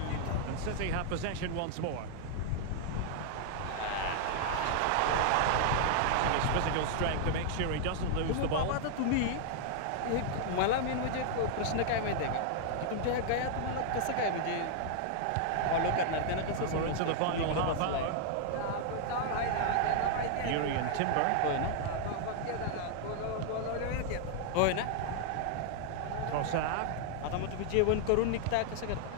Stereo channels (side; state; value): both; different; correlation 0.00